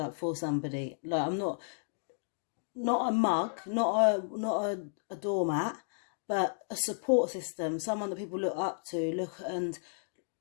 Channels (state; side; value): silent; right; digital silence